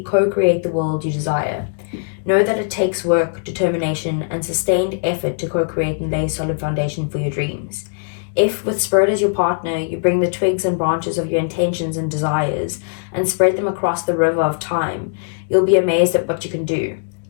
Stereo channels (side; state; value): right; silent; digital silence